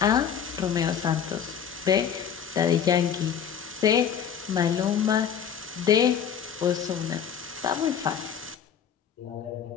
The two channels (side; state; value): right; quieter; 8.1 dB